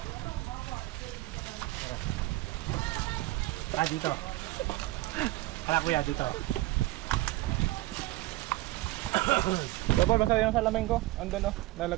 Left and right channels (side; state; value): left; quieter; 18.4 dB